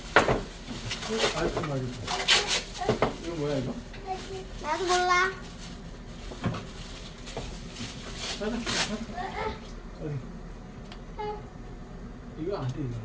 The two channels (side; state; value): both; identical; correlation 1.00